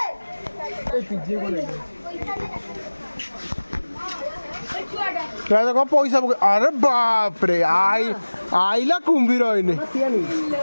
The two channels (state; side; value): inverted; both; correlation -1.00